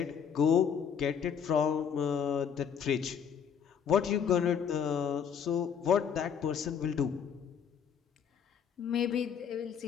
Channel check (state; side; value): quieter; right; 7.5 dB